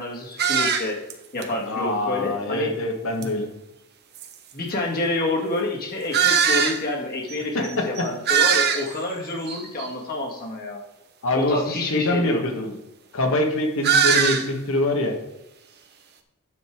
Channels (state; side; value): normal; both; correlation 0.14